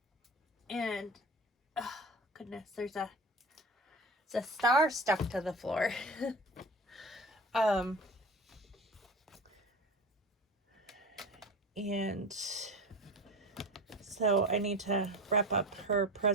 And, oh goodness, there's a star stuck to the floor. And so I need to wrap up her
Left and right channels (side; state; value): both; normal; correlation 0.32